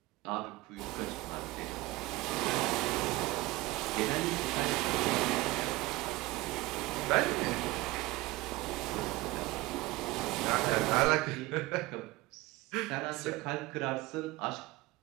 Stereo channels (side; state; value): left; quieter; 20.1 dB